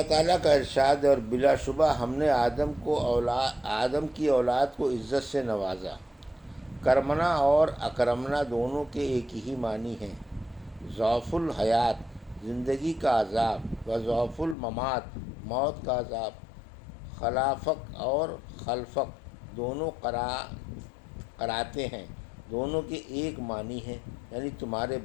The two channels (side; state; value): right; drops out; at 14.6 s